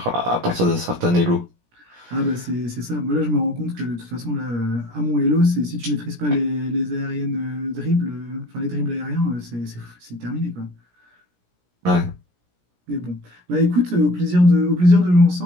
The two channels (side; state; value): left; late; 17 ms